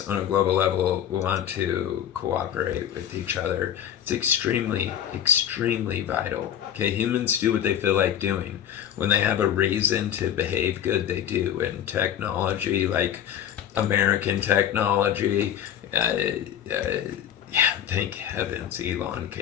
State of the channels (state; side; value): quieter; right; 10.0 dB